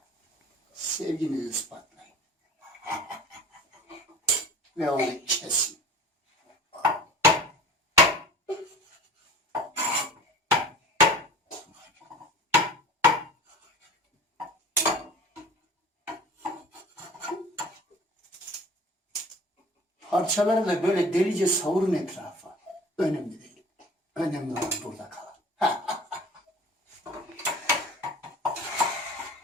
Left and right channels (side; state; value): both; normal; correlation 0.42